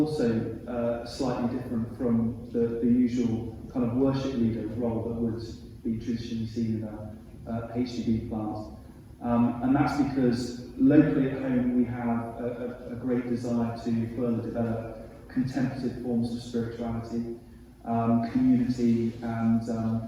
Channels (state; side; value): identical; both; correlation 1.00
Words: slightly different from the usual kind of worship leader role that would be traditionally seen in a HDB plant. And that's because locally at home we have a great desire to further develop contemplative forms of spirituality, community, and